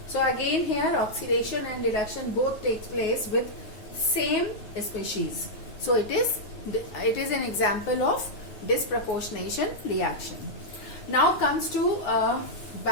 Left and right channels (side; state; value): right; late; 9.5 ms